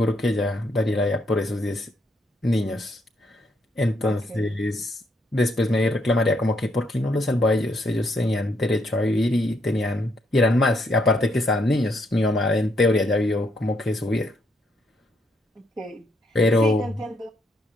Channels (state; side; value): normal; both; correlation 0.74